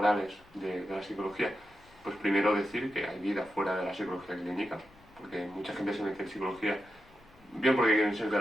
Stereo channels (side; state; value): left; noise; rumble, 28 dB below the sound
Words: de la psicología, pues primero decir que hay vida fuera de la psicología clínica, porque mucha gente se mete en psicología, bien porque quieren ser